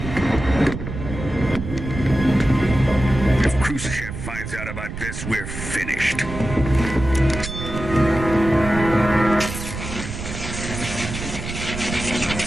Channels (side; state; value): right; noise; rumble, 8 dB below the sound